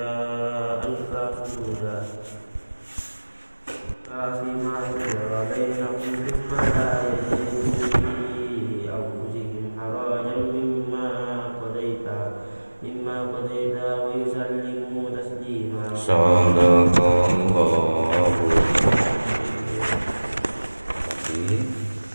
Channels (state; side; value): inverted; both; correlation -1.00